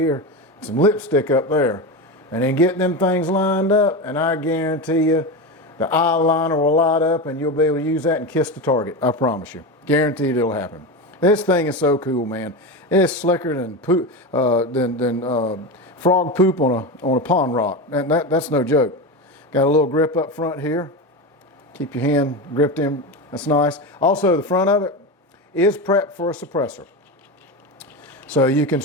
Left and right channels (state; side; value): normal; both; correlation 0.20